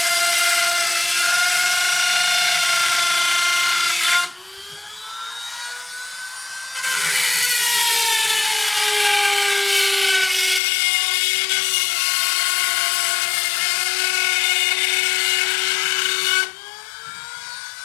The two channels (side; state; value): right; drops out; at 10.6 s